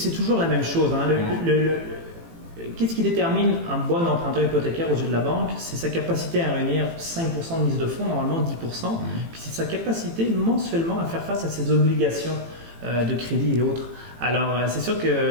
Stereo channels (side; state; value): left; late; 18 ms